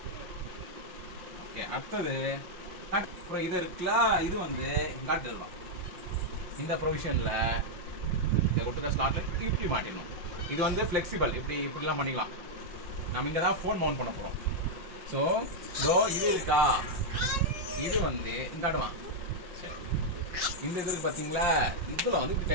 ஓகே அடுத்தது அப்புறம் இது இருக்குல்ல, இது வந்து காட்டு தருவான். இந்த ப்ரொவிஷன்ல இந்த கொடுத்த ஸ்லாட்ல இப்படி மாட்டிடணும். இது வந்து ஃபிளெக்சிபிள். இப்படிலாம் பண்ணிக்கலாம். நம்ம இங்க தான் ஃபோன் மவுண்ட் பண்ண போறோம். ஸோ இதோ இது இருக்கா, இது வந்து இந்த அடுவான். சரி இந்த இது இருக்கு பார்த்தீங்களா, இதில் வந்து இப்படி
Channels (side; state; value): left; late; 5.9 ms